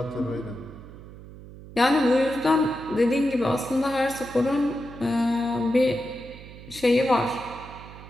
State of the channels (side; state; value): right; noise; hum, 16 dB below the sound